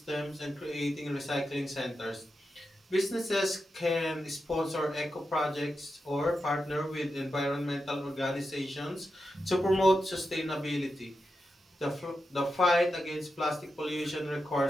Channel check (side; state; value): both; normal; correlation 0.89